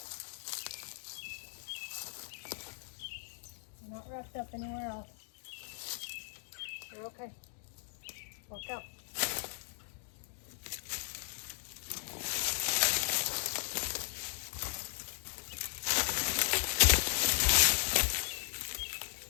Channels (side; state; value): right; silent; digital silence